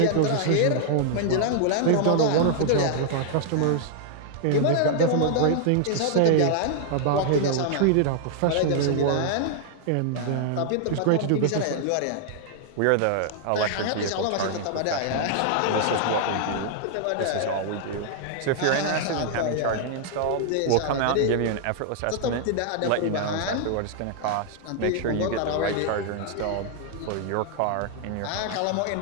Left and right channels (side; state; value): both; different; correlation -0.01